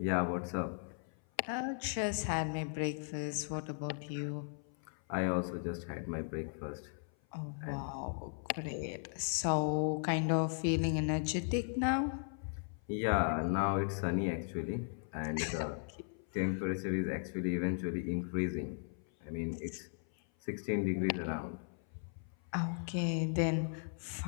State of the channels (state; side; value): silent; right; 53 dB below the other